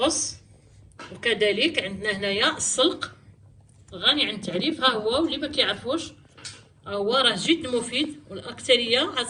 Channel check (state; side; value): identical; both; correlation 1.00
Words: وكذلك عندنا هنايا السلق غني عن التعريف. ها هو، واللي ما كيعرفوش هو راه جد مفيد والاكثريه هاد